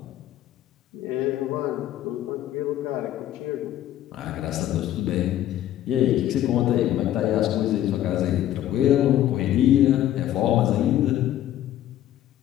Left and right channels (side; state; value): right; quieter; 12.5 dB